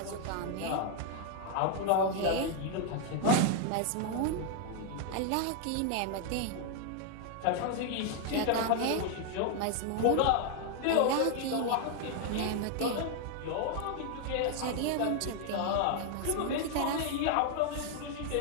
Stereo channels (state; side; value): different; both; correlation 0.00